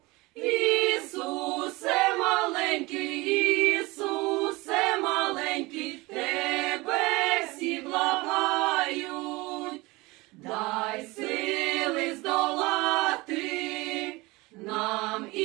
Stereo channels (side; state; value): left; quieter; 22.6 dB